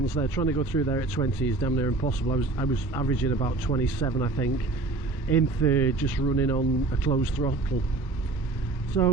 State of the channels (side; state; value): left; quieter; 3.6 dB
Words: there, trying to go through there at 20 is damn near impossible. I was averaging about 27, I think, in third, just running on a closed throttle.